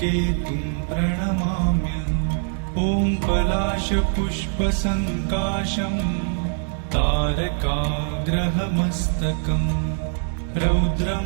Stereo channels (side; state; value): left; silent; 63 dB below the other